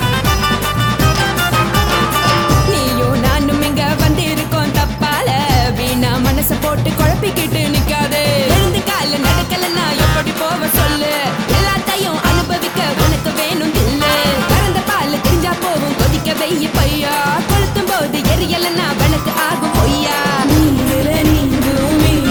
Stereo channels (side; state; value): both; identical; correlation 1.00